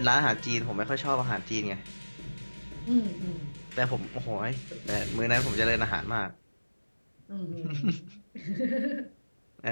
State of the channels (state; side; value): inverted; both; correlation -1.00